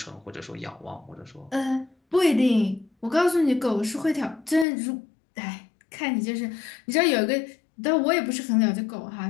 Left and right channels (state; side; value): drops out; right; at 4.7 s